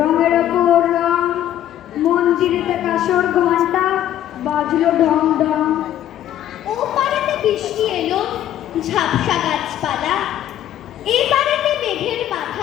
ওপর রং। মন্দিরেতে কাসর ঘন্টা বাজলো ঢং ঢং। ও পারেতে বৃষ্টি এলো, ঝাপসা গাছপালা, এই পারেতে মেঘের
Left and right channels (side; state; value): right; quieter; 11.8 dB